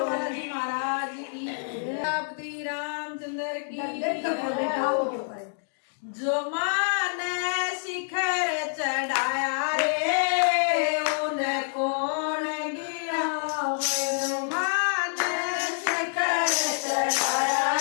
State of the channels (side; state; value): right; silent; digital silence